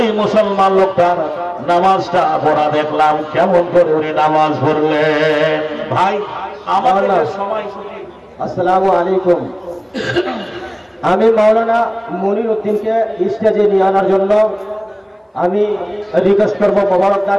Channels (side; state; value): both; identical; correlation 1.00